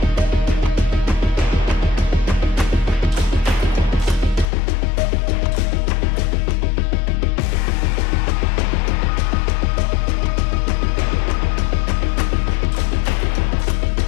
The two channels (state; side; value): drops out; right; at 4.5 s